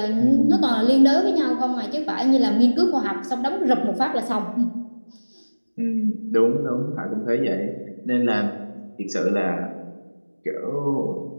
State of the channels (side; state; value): both; inverted; correlation -1.00